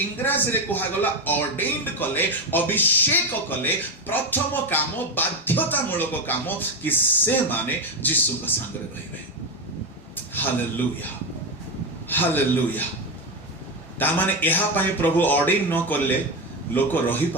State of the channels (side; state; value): both; normal; correlation 0.13